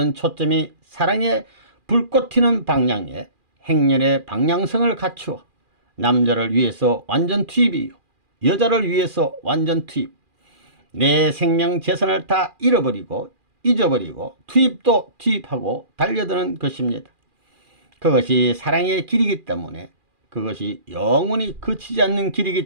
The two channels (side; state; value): left; late; 2.4 ms